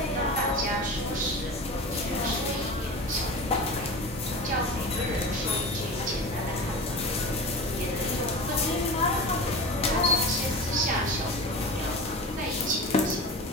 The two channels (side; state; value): both; normal; correlation 0.30